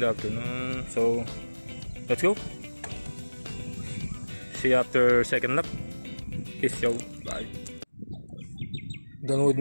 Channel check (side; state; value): both; inverted; correlation -1.00